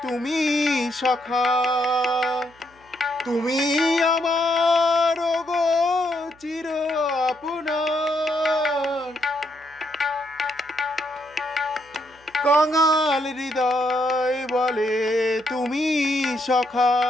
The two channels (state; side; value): noise; right; hum, 30 dB below the sound